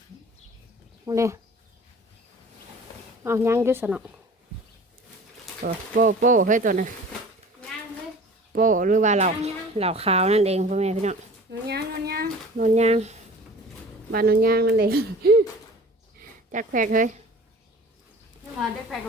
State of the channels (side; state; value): both; normal; correlation 0.43